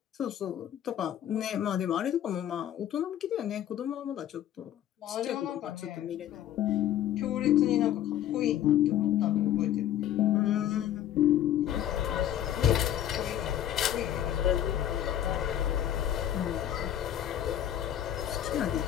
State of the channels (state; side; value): quieter; right; 11.2 dB